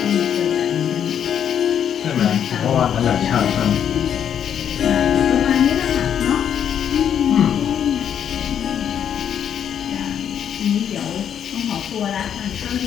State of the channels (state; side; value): quieter; right; 8.9 dB